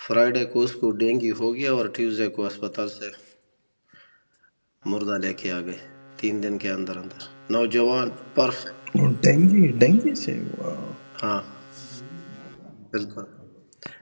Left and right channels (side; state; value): both; inverted; correlation -1.00